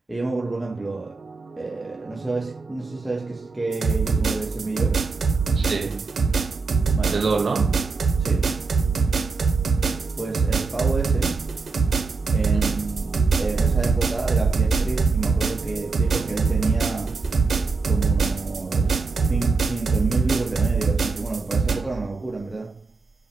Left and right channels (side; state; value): left; quieter; 4.3 dB